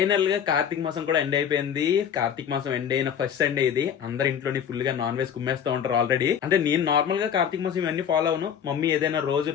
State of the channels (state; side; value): quieter; right; 8.4 dB